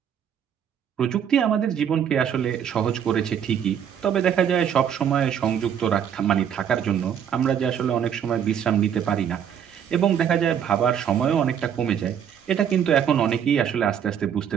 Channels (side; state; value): left; quieter; 8.7 dB